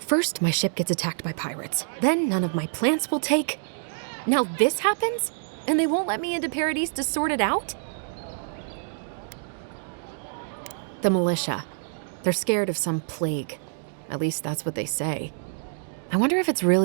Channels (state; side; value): silent; left; digital silence